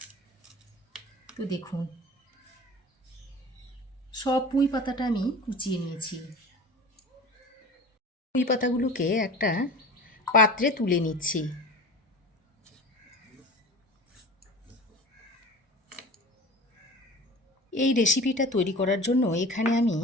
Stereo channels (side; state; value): both; normal; correlation 0.37